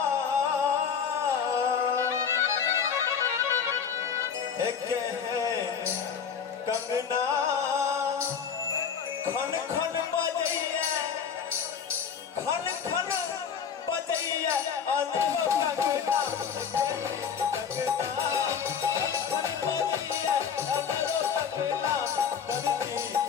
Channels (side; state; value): right; quieter; 7.1 dB